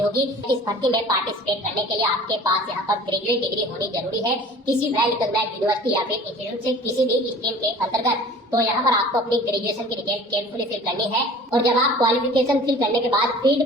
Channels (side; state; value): both; normal; correlation 0.45